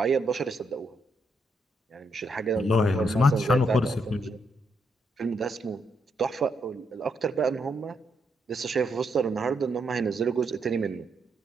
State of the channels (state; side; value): normal; both; correlation 0.78